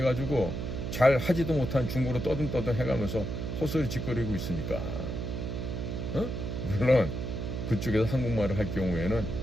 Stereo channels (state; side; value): noise; right; hum, 4 dB below the sound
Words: 잘 하지도 못한 중국어로 떠듬떠듬 해가면서 헛소리 짓거리고 있으니까. 물론 그쪽에서 한국말을 할 경우에는